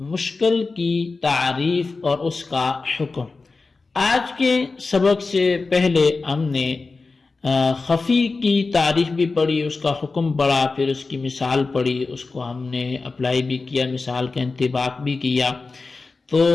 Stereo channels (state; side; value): quieter; right; 3.9 dB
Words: مشکل کی تعریف اور اس کا حکم۔ آج کے سبق سے پہلے ہم نے خفی کی تعریف بھی پڑھی، اس کا حکم پڑھا، پھر اس کی مثال پڑھی، اس کو ہم نے اپلائی بھی کیا، مثال کا انطباق بھی کیا۔ تو